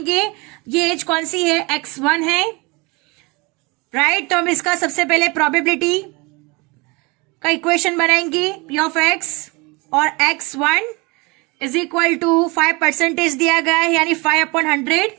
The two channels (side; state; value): left; quieter; 26.8 dB